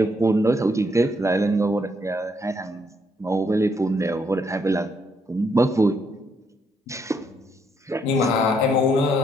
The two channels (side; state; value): both; normal; correlation 0.73